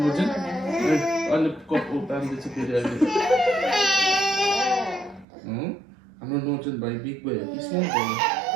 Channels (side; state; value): left; drops out; at 5.2 s